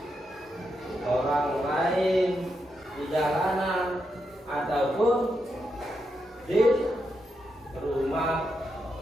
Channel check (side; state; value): both; normal; correlation 0.84